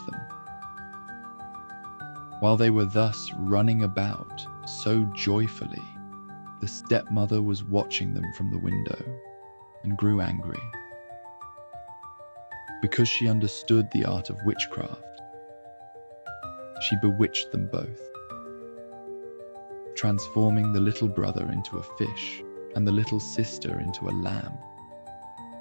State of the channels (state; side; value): inverted; both; correlation -1.00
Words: them. While they were thus running about so joyfully, the stepmother was watching them from the window and grew angry. Because she understood the art of witchcraft, she bewitched them both, transforming the little brother into a fish and the little sister into a lamb.